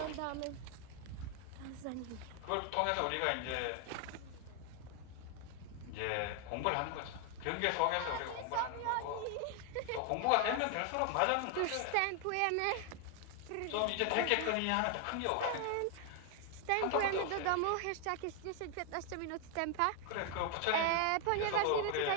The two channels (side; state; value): both; different; correlation 0.00